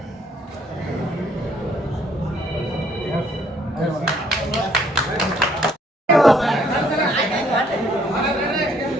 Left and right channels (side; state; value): both; normal; correlation 0.65